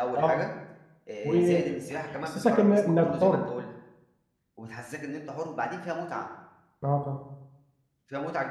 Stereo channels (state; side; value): identical; both; correlation 1.00